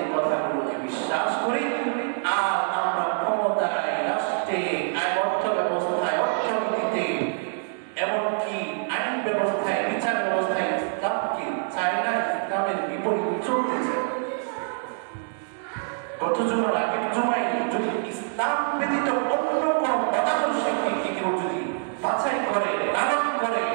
কথাগুলোকে বিশ্বাস করি। আর আমরা ক্ষমতায়, রাষ্ট্রে, অর্থ ব্যবস্থায়, অর্থনীতিতে, এমনকি আইন ব্যবস্থায়, বিচার ব্যবস্থায় ইসলামকে চাই না, ইসলামের বিপরীত চলতে চাই। গত জুমার আগের জুমায় যদি ইসলাম ব্যতীত অন্য কোন মতাদর্শকে কেউ যদি বাছাই করে, লালন করে,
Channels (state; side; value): silent; left; digital silence